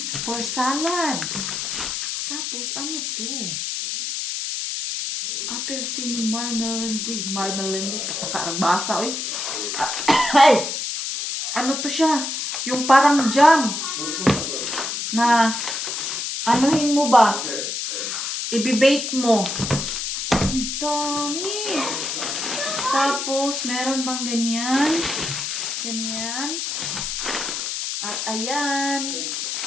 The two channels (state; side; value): noise; left; hiss, 3 dB below the sound